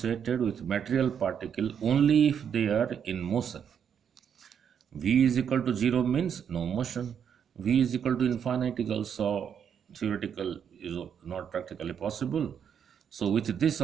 with material particle only if they are in motion. V is equal to 0 means no motion. V is equal to infinite is also theoretical, is not practically possible. So with this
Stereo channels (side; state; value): left; quieter; 8.0 dB